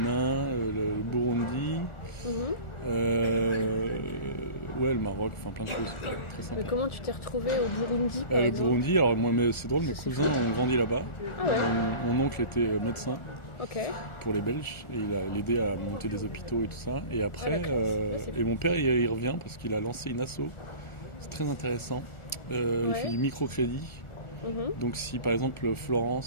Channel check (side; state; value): right; late; 1.4 ms